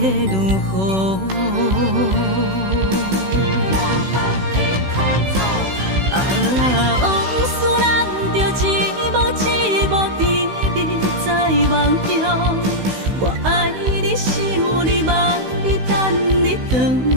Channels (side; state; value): left; late; 16 ms